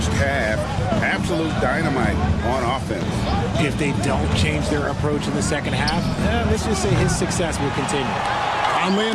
half. Absolute dynamite on offense. If they don't change their approach in the second half, let's just say his success will continue. Conley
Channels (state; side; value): identical; both; correlation 1.00